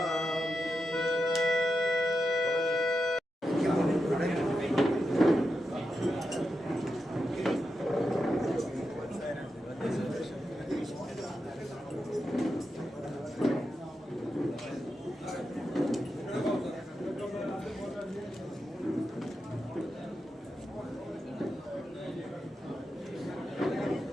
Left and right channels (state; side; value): normal; both; correlation 0.88